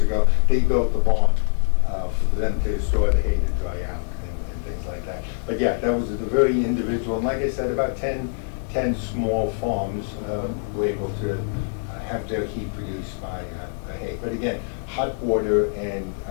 ago, they built the barn for them to store the hay to dry out and things like that. But yeah, that was a very individual. And like I said, about 10 small farms were able to have their heat produced by hay. But again, hot water and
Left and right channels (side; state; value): right; silent; digital silence